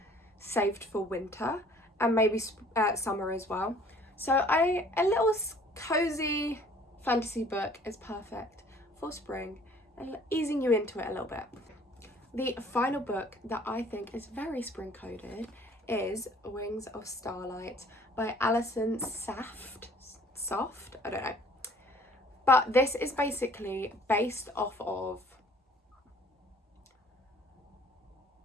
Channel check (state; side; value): normal; both; correlation 0.55